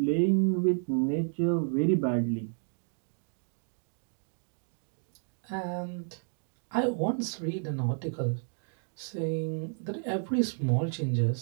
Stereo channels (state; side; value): silent; left; 57 dB below the other